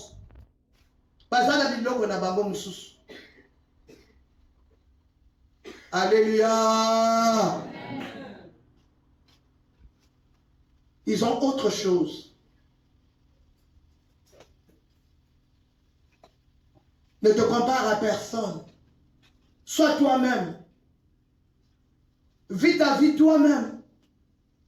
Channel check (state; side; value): identical; both; correlation 1.00